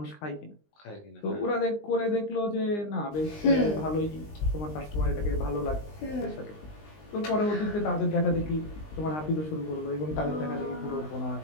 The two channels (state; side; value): late; right; 19 ms